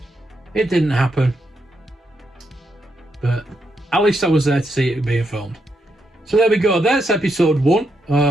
But at least I was there to see it being filmed. So there we go. That's episode 1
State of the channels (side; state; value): both; normal; correlation 0.81